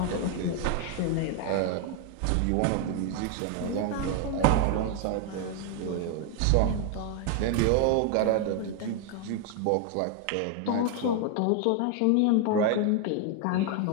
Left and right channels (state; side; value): different; both; correlation 0.01